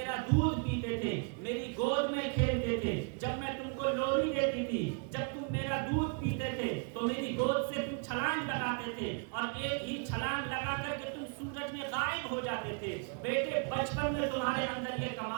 دودھ پیتے تھے, میری گود میں کھیلتے تھے, جب میں تم کو لوری دیتی تھی, جب تم میرا دودھ پیتے تھے تو میری گود سے تم چھلانگ لگاتے تھے اور ایک ہی چھلانگ لگا کر کے تم سورج میں غائب ہو جاتے تھے. بیٹے بچپن میں تمہارے اندر یہ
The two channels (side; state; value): left; quieter; 35.8 dB